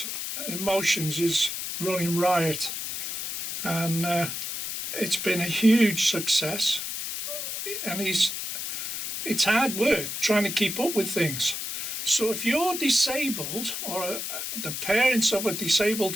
Emotions is running riot. And it's been a huge success. And it's hard work trying to keep up with things. So if you're disabled, or the parents of a disabled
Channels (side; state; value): left; noise; hiss, 4 dB below the sound